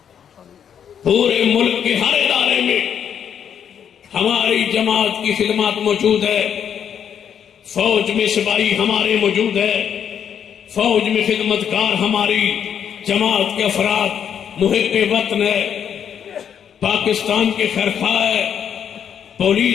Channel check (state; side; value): quieter; right; 8.4 dB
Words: پورے ملک کے ہر ادارے میں ہماری جماعت کی خدمات موجود ہے، فوج میں سپاہی ہمارے موجود ہے، فوج میں خدمتگار ہماری جماعت کے افراد محب وطن ہے، پاکستان کے خیرخواہ ہے،